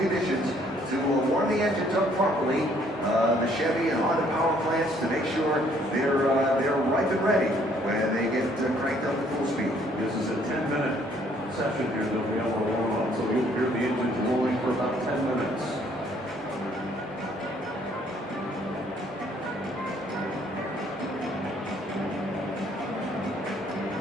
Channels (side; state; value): both; normal; correlation 0.64